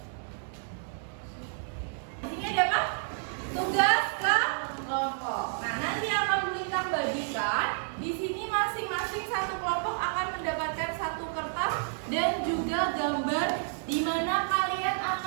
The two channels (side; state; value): left; silent; 58 dB below the other